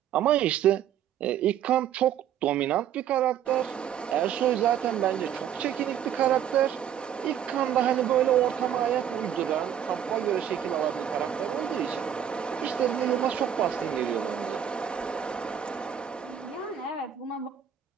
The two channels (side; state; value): left; quieter; 9.5 dB